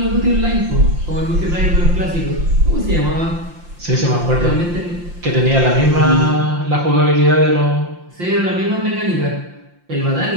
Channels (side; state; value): left; late; 5.8 ms